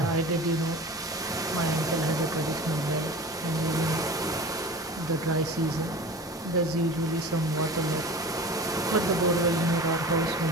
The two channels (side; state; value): both; normal; correlation 0.36